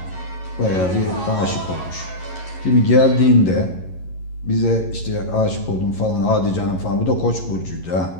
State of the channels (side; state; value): right; late; 11 ms